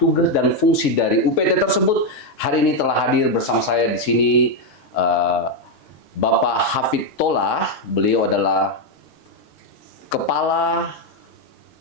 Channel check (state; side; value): normal; both; correlation 0.04